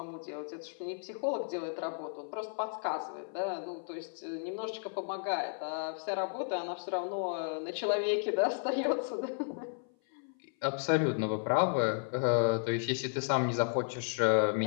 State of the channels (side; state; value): right; silent; 55 dB below the other